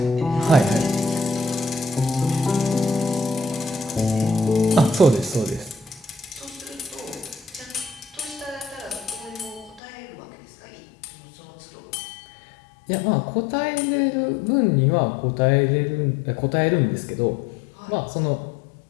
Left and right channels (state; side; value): drops out; right; at 9.8 s